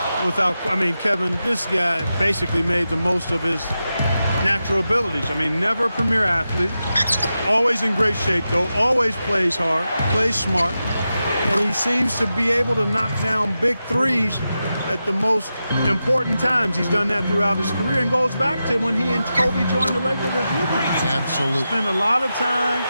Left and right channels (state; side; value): inverted; both; correlation -0.90